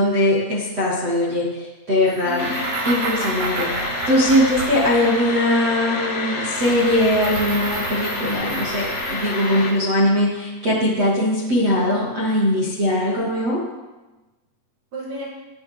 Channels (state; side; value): late; left; 8.1 ms